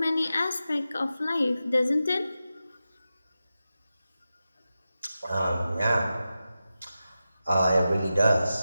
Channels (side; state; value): both; inverted; correlation -0.92